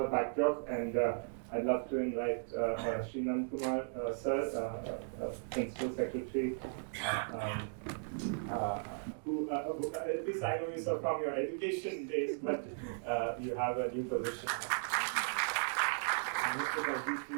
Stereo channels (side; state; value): left; silent; digital silence